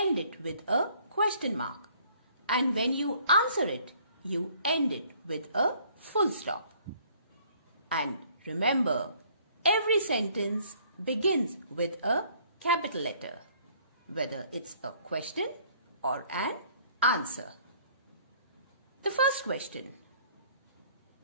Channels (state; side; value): inverted; both; correlation -0.59